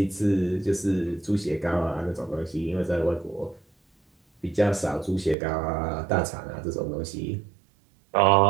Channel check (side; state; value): left; drops out; at 5.4 s